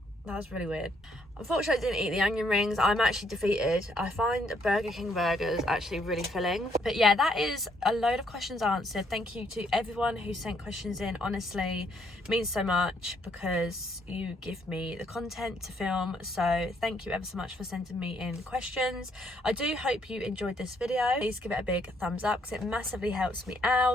That was really weird. Unfortunately, I didn't eat the onion rings. I'm actually defeated. I find Burger King burgers actually really filling. But yeah, that is a load of questions answered. Thank you to everyone who sent questions in. Honestly, it means so much because you give me the content to film. So thank you ever so much for sending me in questions. I do hope you enjoyed this video. Please give it a big thumbs up because it massively helps me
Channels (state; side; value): normal; both; correlation 0.70